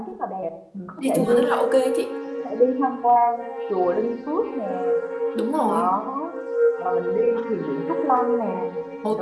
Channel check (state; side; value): identical; both; correlation 1.00